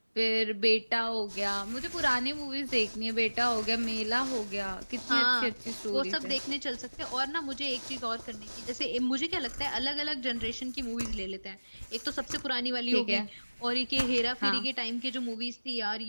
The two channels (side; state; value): both; inverted; correlation -1.00